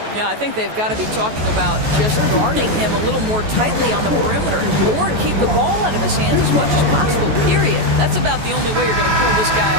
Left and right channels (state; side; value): late; left; 14 ms